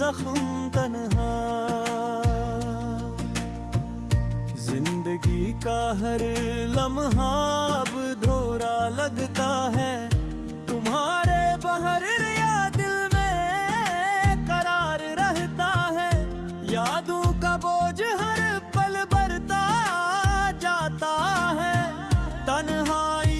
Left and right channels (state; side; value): identical; both; correlation 1.00